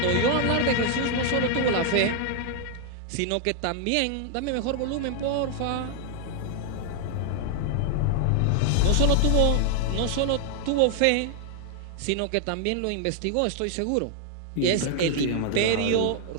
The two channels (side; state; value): both; different; correlation 0.00